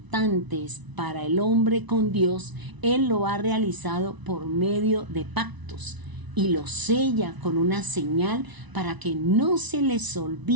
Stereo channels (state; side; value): late; left; 1.0 ms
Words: para el hombre con Dios, Él lo ha realizado por medio de pactos. Y lo sella con una señal para que no se les